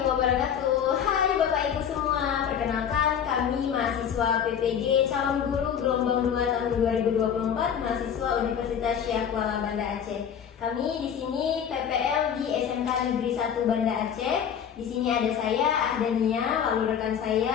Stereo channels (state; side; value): quieter; right; 8.3 dB